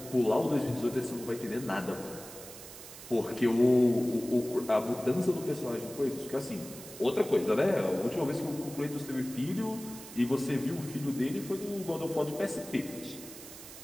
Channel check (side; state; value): right; noise; hiss, 14 dB below the sound